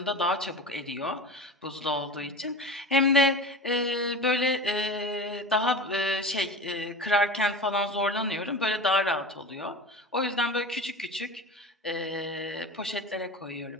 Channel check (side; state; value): both; normal; correlation 0.32